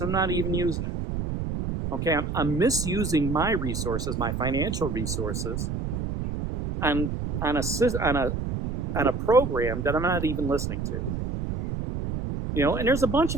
I'm not even using it. Okay, I'm misusing my resources, my financial resources, on a program that I'm not even listening to. And there's a bunch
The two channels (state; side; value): noise; right; rumble, 3 dB below the sound